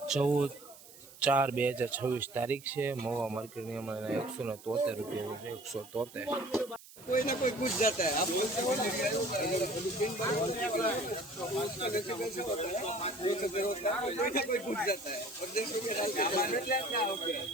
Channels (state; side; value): noise; right; hiss, 20 dB below the sound